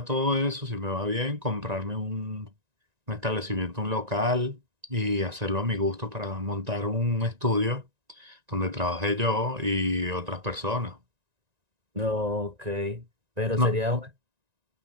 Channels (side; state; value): left; late; 1.9 ms